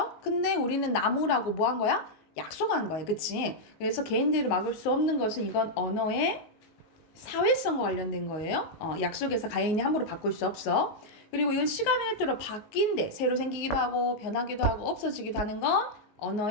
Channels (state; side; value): late; right; 19 ms